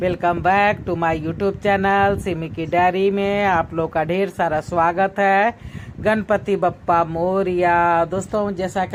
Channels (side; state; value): both; identical; correlation 1.00